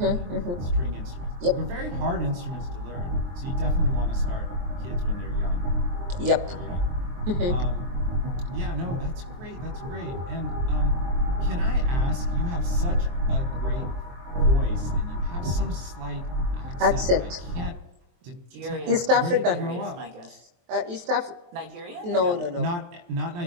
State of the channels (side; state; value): left; late; 23 ms